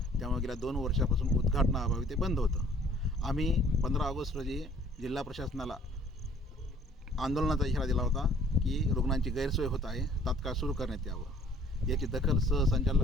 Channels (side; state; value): both; normal; correlation 0.57